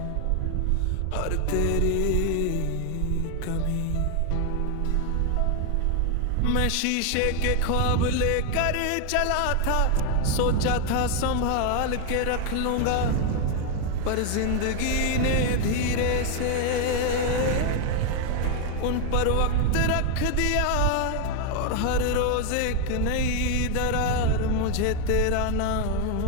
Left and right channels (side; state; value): both; different; correlation 0.00